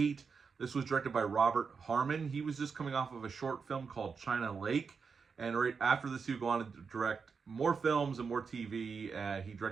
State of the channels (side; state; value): left; quieter; 5.5 dB